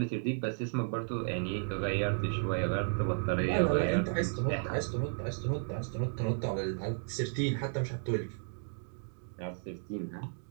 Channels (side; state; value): left; silent; digital silence